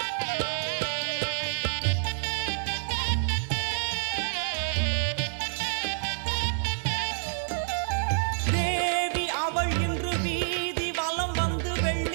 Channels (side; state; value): left; silent; 59 dB below the other